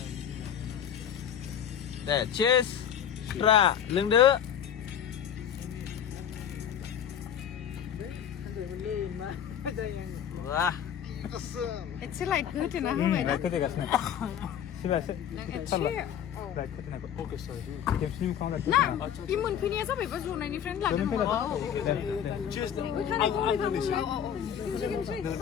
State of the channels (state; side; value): quieter; right; 9.1 dB